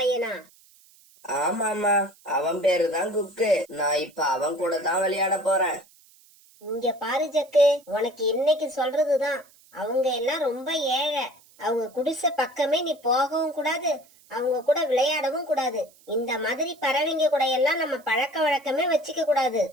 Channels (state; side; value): noise; right; hiss, 28 dB below the sound